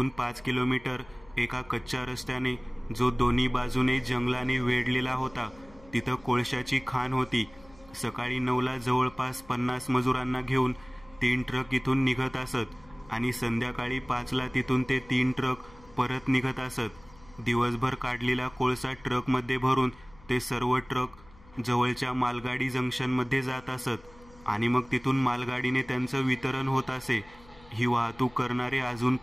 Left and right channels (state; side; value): noise; left; hum, 24 dB below the sound